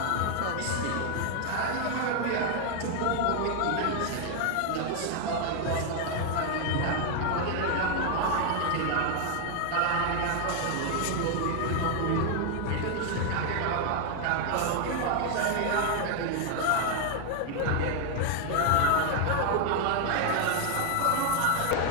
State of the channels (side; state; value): both; different; correlation 0.01